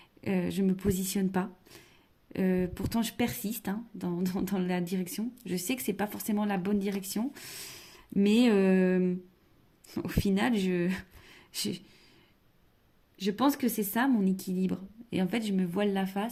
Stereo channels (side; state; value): both; identical; correlation 1.00